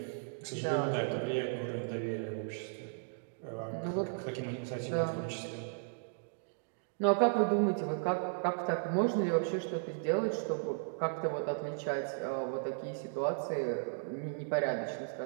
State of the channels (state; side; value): silent; left; digital silence